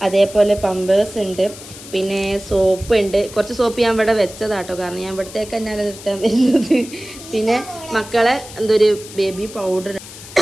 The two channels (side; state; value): left; noise; hiss, 16 dB below the sound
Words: അതേപോലെ പമ്പേഴ്സ് ഉണ്ട്, പിന്നെ സോപ്പ് ഉണ്ട്. കുറച്ച് സോപ്പ് ഞാൻ ഇവിടെ വെച്ചതാട്ടോ, കാരണം ഞാൻ ഇവിടത്തേക്ക് തന്നെയാണ് റിട്ടേൺ വരുന്നത്. പിന്നെ മക്കളെ എന്തൊരു ബേബി പൗഡർ,